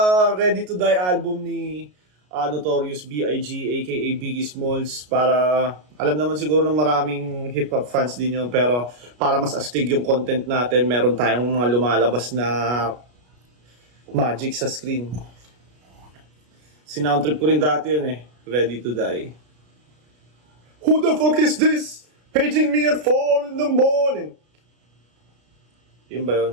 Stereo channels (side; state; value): left; late; 33 ms